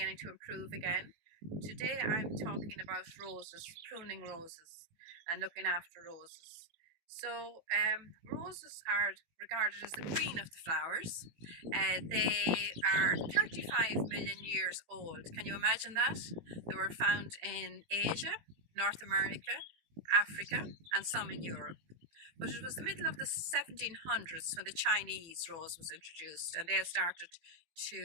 to improve again. Today I'm talking about roses, pruning roses and looking after roses. So roses are regarded as the queen of the flowers. They are 35 million years old. Can you imagine that? They were found in Asia, North America, Africa, and some in Europe. But it was the middle of the 1700s when the Chinese rose was introduced, and they started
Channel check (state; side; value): late; left; 18 ms